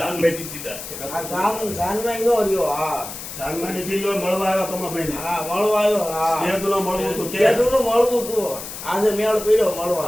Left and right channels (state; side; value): noise; left; hiss, 10 dB below the sound